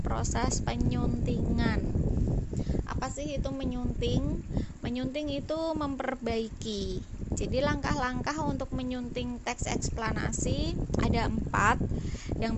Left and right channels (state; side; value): identical; both; correlation 1.00